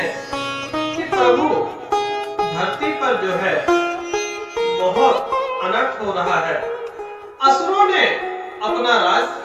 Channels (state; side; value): identical; both; correlation 1.00